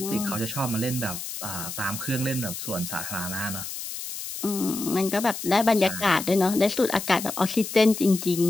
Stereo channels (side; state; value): left; noise; hiss, 8 dB below the sound